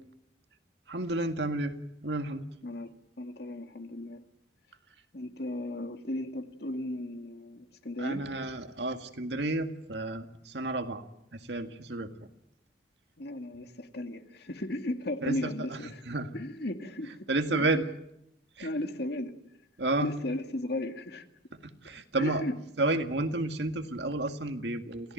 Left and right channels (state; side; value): normal; both; correlation 0.32